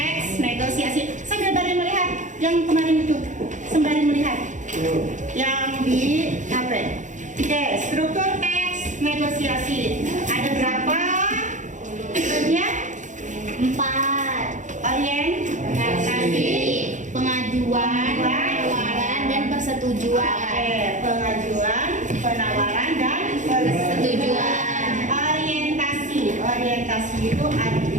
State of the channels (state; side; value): late; left; 0.36 ms